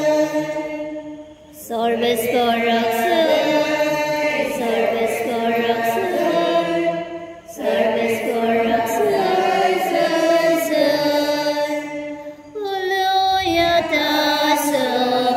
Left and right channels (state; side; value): identical; both; correlation 1.00